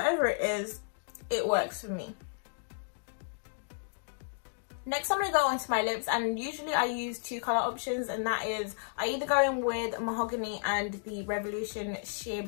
it is, it works for me. Next, I'm going to go onto my lips, and usually I use two colour options, and that is, I either go in with Mahogany and the Revolution Sheer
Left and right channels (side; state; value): right; silent; digital silence